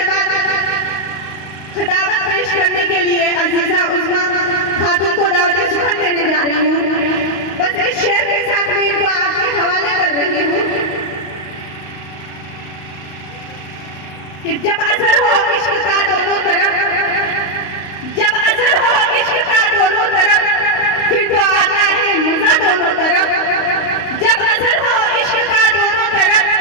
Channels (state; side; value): late; right; 35 ms